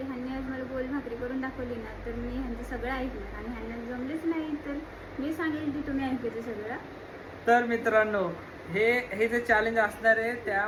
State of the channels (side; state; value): both; identical; correlation 1.00